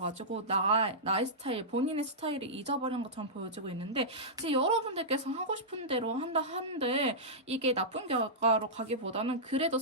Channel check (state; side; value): normal; both; correlation -0.13